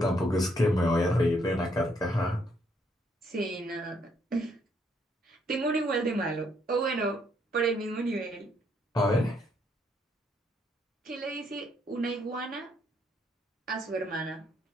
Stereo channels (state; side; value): normal; both; correlation 0.71